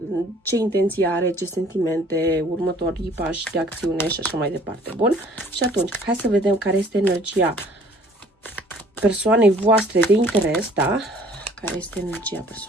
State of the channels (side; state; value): both; normal; correlation 0.55